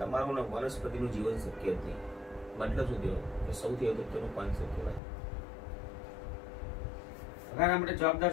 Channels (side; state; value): right; drops out; at 5.0 s